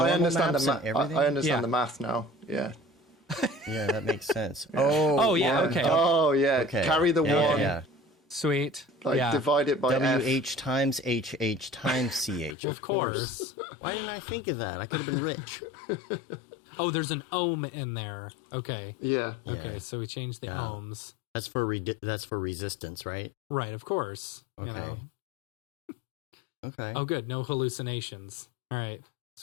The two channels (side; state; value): right; drops out; at 12.6 s